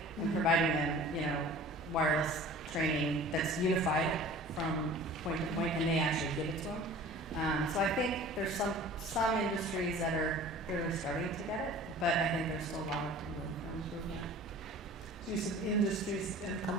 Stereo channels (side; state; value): both; normal; correlation 0.43